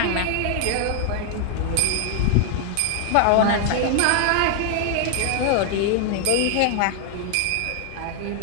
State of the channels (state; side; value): different; both; correlation 0.00